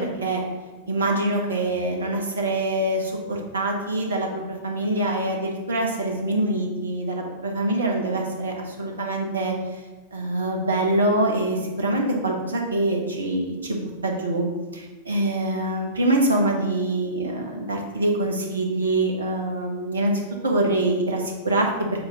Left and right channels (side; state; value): both; inverted; correlation -0.42